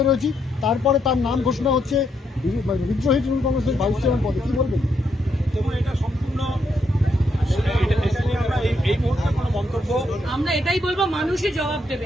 রয়েছি, তারপরে তার নাম ঘোষণা হচ্ছে বিদ্রোহী তৃণমূল কংগ্রেসের ভাইস চেয়ারম্যান পদে। কি বলবেন? এবং এটা সম্পূর্ণ, এটা নিয়ে আমরা এই মুহূর্তে কোনো মন্তব্য, আমরা এটাই বলবো, মানুষই জবাব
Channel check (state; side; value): normal; both; correlation 0.77